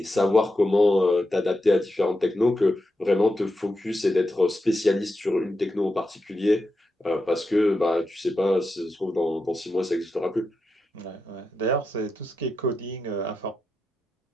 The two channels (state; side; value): normal; both; correlation 0.87